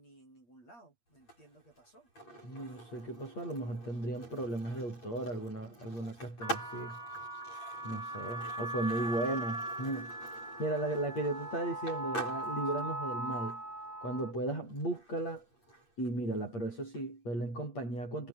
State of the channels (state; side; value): late; right; 8.5 ms